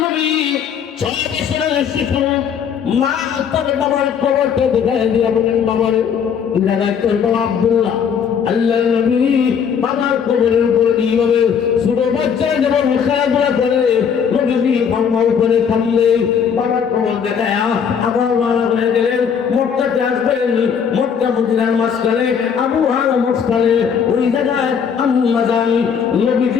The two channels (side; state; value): right; quieter; 7.3 dB